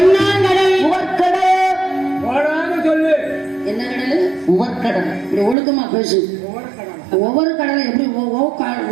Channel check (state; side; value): drops out; left; at 5.6 s